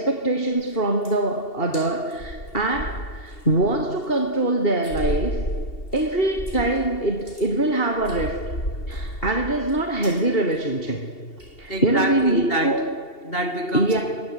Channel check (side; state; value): right; late; 2.7 ms